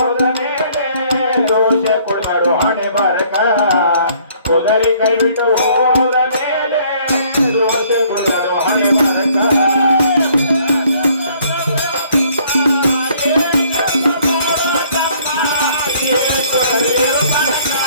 ಮೇಲೆ ದೋಷ ಕೊಡಬಾರೋ ಹಣೆ ಬಾರಕ ಕುದುರೆ ಕೈ ಬಿಟ್ಟು ಹೋದ ಮೇಲೆ ದೋಷ ಕೊಡಬಾರೋ ಹಣೆ ಬಾರಕ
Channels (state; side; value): inverted; both; correlation -0.61